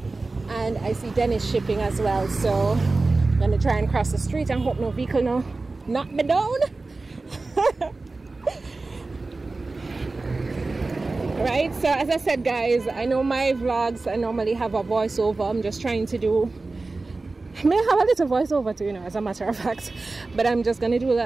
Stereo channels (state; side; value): quieter; left; 3.5 dB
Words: and I see Dennis Shipping as well. So I'm gonna try and cross the street and hope no vehicle knock me down. Right, so as I said, guys, I know my vlogs, I normally have a voiceover. I'm just trying to do, I may have a little voiceover too, you know, as a matter of fact, but I'm just gonna do